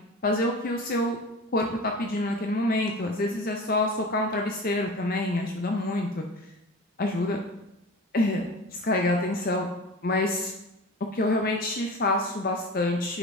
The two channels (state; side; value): normal; both; correlation 0.35